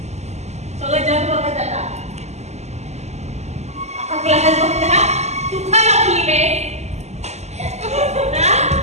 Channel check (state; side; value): late; left; 0.33 ms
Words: सगळं जग बघत जाता. अख्खा क्लास बघता तू का लागली बे.